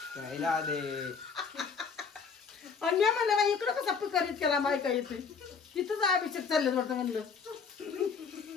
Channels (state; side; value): quieter; right; 5.6 dB